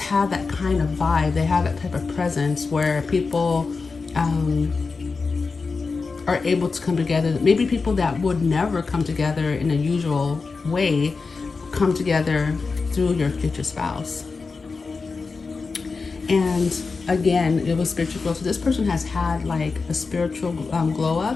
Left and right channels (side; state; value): right; quieter; 4.4 dB